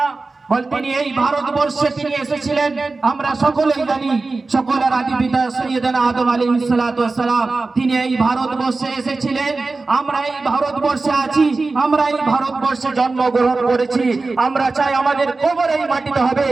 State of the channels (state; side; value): quieter; left; 3.7 dB